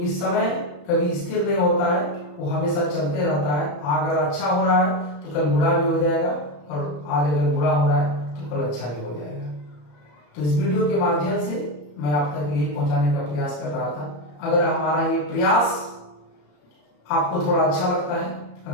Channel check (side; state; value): right; late; 34 ms